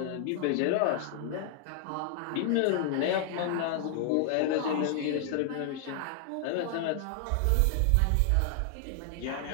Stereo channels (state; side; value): different; both; correlation 0.00